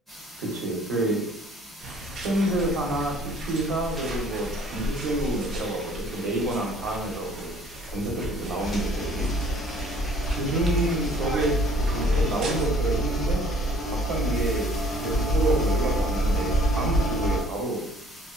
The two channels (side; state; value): both; normal; correlation 0.56